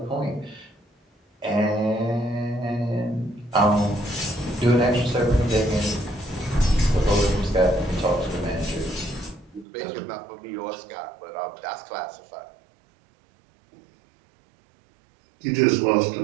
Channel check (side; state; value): left; drops out; at 9.7 s